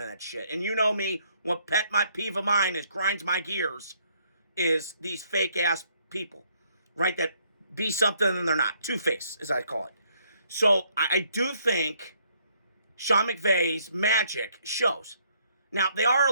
that shit. And you know me, what my peeve of mine is, grinds my gears, is these fake-ass people, right, that be something and they're not. Two-face, as I call it. So I do think Sean McVay's magic shows. Now, they are a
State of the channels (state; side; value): inverted; both; correlation -0.68